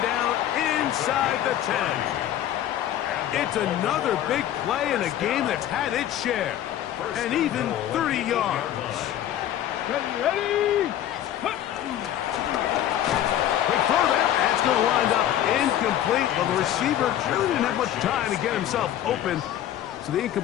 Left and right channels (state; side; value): quieter; right; 11.6 dB